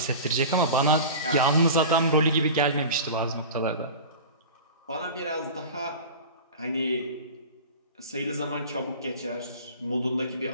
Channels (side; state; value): both; inverted; correlation -0.34